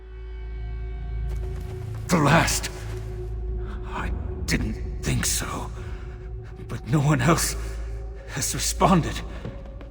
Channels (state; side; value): identical; both; correlation 1.00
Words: The last. I didn't think so. But no one else has responded.